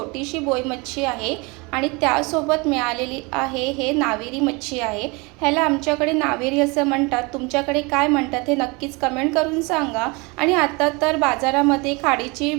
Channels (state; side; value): quieter; left; 27.4 dB